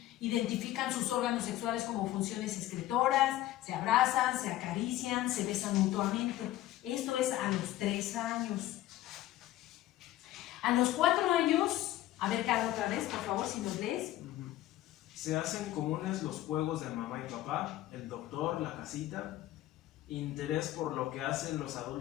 Identifican sus órganos sexuales como funciones excretoras, se abrazan, se acarician, se besan mutuamente. Esto es a los 3 años. A los 4 años, a ver, Carlos, otra vez, por favor, si nos lees. Se hacen comunes los juegos de mamá y papá, el doctor, la casita. interés por lo que hacen los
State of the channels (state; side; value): quieter; right; 14.6 dB